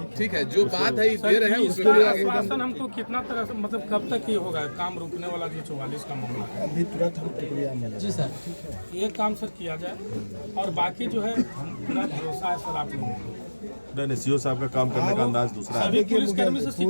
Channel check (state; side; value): inverted; both; correlation -1.00